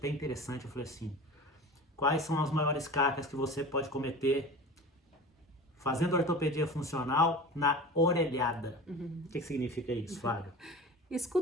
interessante, eu falei assim, quais são as maiores cacas que você pode cometer fazendo ortopedia funcional na orelhada? O que significa isso, Flávio?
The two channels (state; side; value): normal; both; correlation 0.35